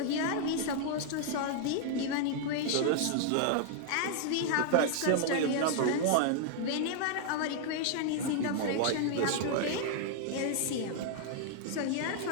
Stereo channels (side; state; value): both; different; correlation 0.00